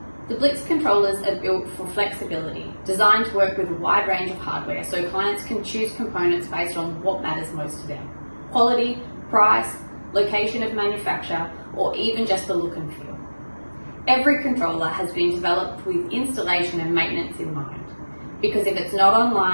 The Blyx controllers are built for flexibility, designed to work with a wide range of hardware so clients can choose components based on what matters most to them: quality, price, location of manufacture, or even just the look and feel. Every controller has been developed with installation and maintenance in mind, because if it's not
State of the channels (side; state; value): both; inverted; correlation -1.00